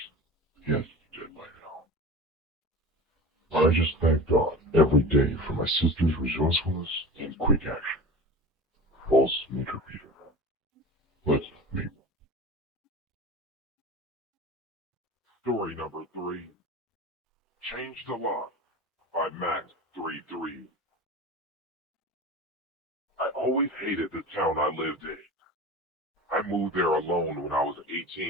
he has to be dead by now. I just thank God every day for my sister's resourcefulness and quick action. False meter reader. Let's meet. Story number 3. Change the Lock by Max33. I always hated the town I lived in. I moved there alone when I was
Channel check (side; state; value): both; normal; correlation 0.33